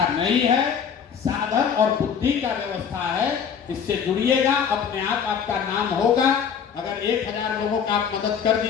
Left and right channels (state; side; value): quieter; right; 7.3 dB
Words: नहीं है, साधन और बुद्धि का व्यवस्था है। इससे जुड़िएगा, अपने आप आपका नाम होगा। अगर 1000 लोगों का आप मदद कर